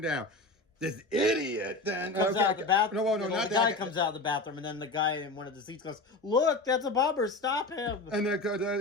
down. This idiot then comes out of the bathroom. No, not the guy comes out of the bathroom, and then the guy in one of the seats goes, "Look, that's a bomber! Stop him!" And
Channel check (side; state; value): right; quieter; 3.0 dB